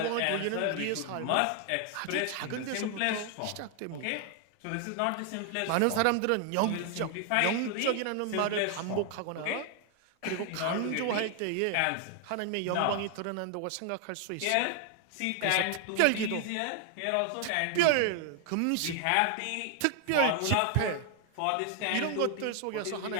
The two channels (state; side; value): different; both; correlation 0.00